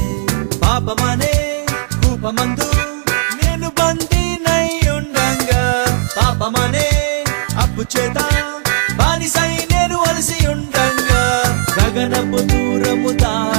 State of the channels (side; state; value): left; silent; digital silence